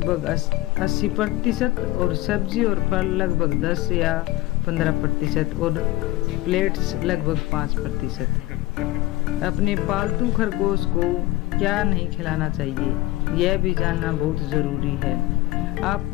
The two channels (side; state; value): right; quieter; 18.7 dB